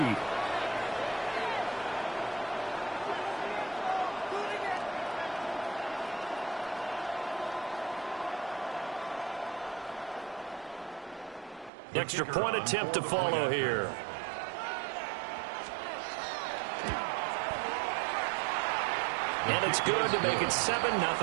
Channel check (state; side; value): drops out; left; at 11.7 s